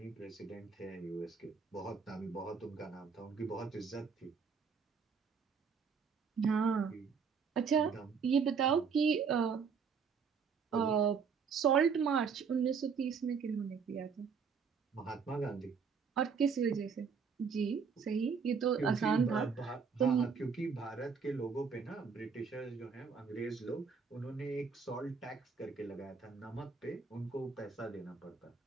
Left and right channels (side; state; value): left; quieter; 5.9 dB